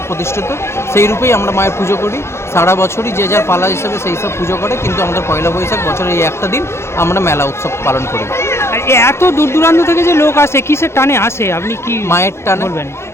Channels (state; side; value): late; right; 0.13 ms